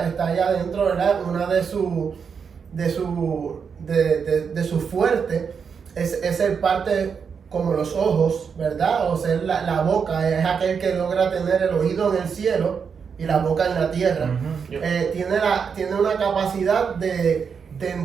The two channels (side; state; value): left; quieter; 6.3 dB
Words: adentro, ¿verdad? Una de sus fuertes es ser parte como los ojos, ¿verdad? O ser la boca, es aquel que logra tener el oído en el cielo y la boca en la tierra. Tiene una capacidad de